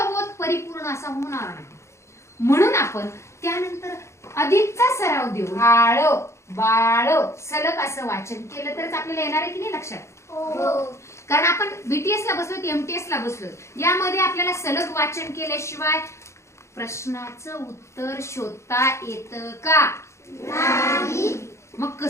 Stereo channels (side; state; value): right; late; 0.14 ms